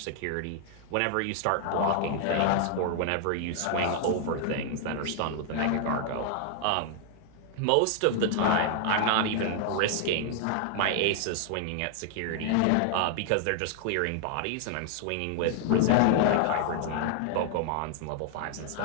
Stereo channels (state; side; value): different; both; correlation 0.00